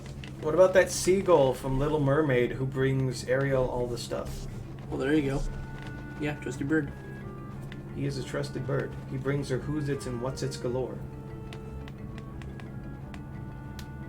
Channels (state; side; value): identical; both; correlation 1.00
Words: about that seagull from Little Mermaid who brings Ariel all the stuff? Well, there you go. Yeah, trusty bird. He is a trusted bird. He brings her who's its and what's its galore.